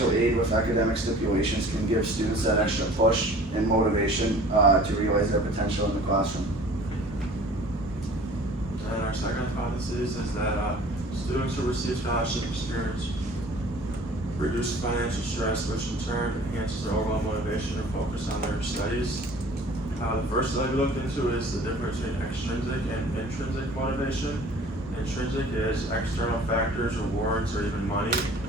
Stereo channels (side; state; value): both; normal; correlation 0.47